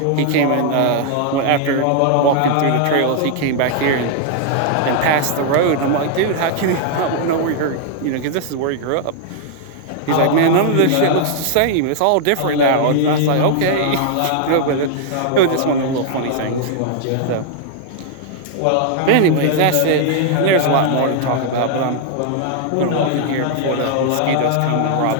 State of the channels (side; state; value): both; different; correlation 0.00